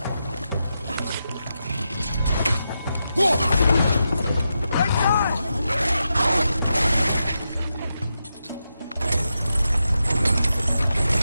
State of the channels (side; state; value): both; inverted; correlation -0.87